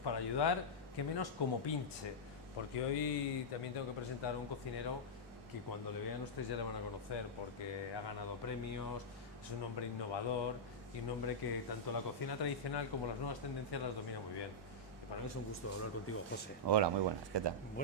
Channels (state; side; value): normal; both; correlation -0.09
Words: ayudar, que menos como pinche. Porque hoy también tengo que presentar a un cocinero que cuando le vean ustedes ya le van a conocer, porque ha ganado premios, es un hombre innovador y un hombre que tanto la cocina tradicional como las nuevas tendencias las domina muy bien. Y para mí es un gusto hablar contigo, José. Hola, muy buenas, ¿qué tal?